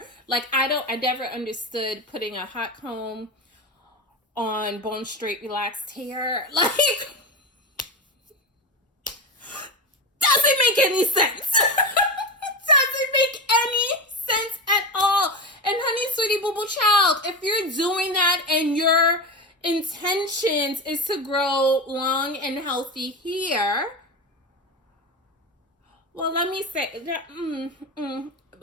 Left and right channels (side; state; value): both; normal; correlation 0.20